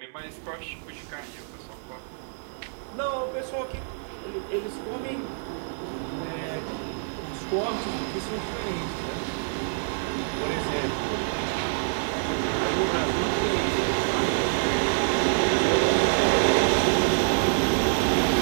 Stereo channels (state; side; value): silent; left; digital silence